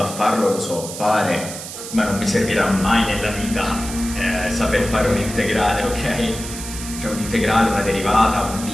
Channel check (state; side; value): noise; right; hiss, 10 dB below the sound